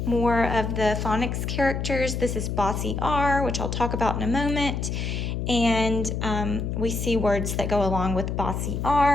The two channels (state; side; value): noise; left; hum, 2 dB below the sound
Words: more of the phonics characters. This is Bossy R, which I'll talk about in a moment. And we see words that go along with bossy